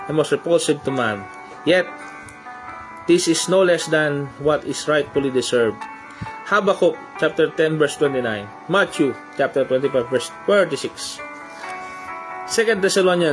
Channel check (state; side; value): identical; both; correlation 1.00